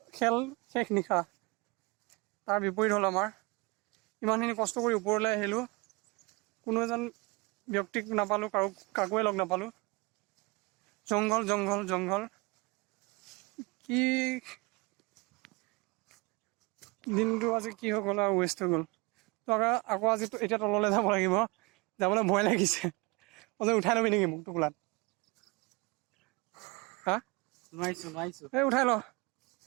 খেল শেষ নিশা তাৰ বিপৰীত হ'ল আমাৰ ইমানখিনি কষ্ট কৰি ওপৰলৈ আহিলোঁ কোনো এজন ব্যক্তিক নাপালোঁ কাকোৱে লগ নাপালোঁ জংঘল কি দিনটো আজি কি হৈ গ'ল আৰু ৱেষ্ট হৈ গ'ল তো আকৌ আজি এতিয়া তললৈ যাব লাগিব যাবলৈ ভয় লাগিছে উঠাই ল'বি নেকি মোক টোপোলাত হা নোৱাৰিছোঁ এই উঠাই ল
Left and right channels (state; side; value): quieter; left; 26.9 dB